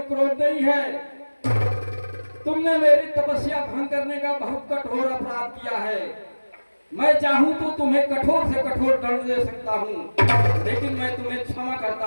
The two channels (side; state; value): both; inverted; correlation -1.00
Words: क्रोध नहीं है। तुमने मेरी तपस्या भंग करने का बहुत कठोर अपराध किया है। मैं चाहूं तो तुम्हें कठोर से कठोर दंड दे सकता हूं, लेकिन मैं तुम्हें क्षमा करता